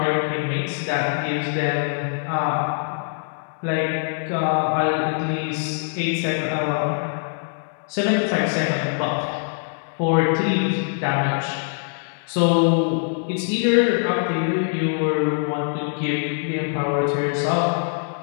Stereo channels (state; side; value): silent; right; 63 dB below the other